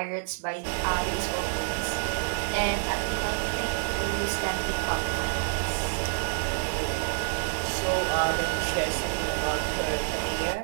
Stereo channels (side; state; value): left; silent; digital silence